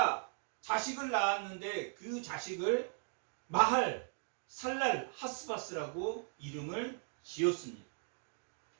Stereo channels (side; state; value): left; silent; 52 dB below the other